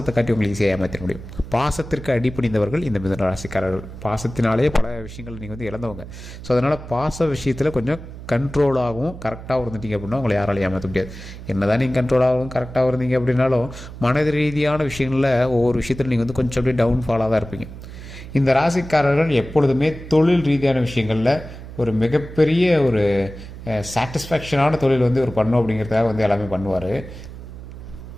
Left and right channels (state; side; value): noise; right; hum, 13 dB below the sound